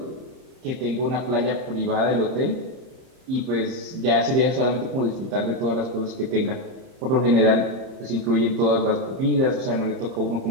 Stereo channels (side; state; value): left; late; 30 ms